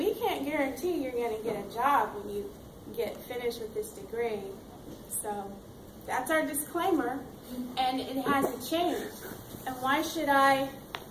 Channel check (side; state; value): both; identical; correlation 1.00